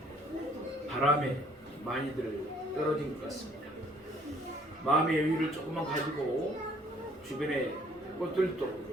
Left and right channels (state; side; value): normal; both; correlation 0.59